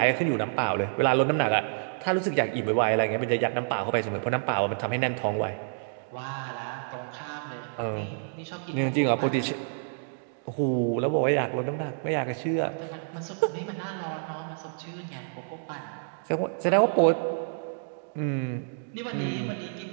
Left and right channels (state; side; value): silent; left; digital silence